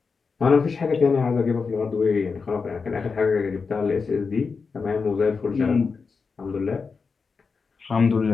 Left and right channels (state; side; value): quieter; right; 5.0 dB